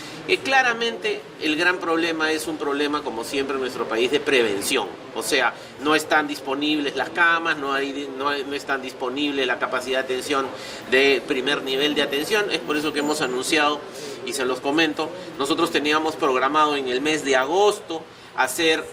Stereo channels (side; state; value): both; identical; correlation 1.00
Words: claramente el gran problema es un problema, como siempre en nuestro país, de prevención. O sea, no están disponibles las camas, no están disponible la capacidad de atención de primer nivel de atención. Es por eso que hemos anunciado, y se los comento, nosotros teníamos programado en el mes de agosto hacer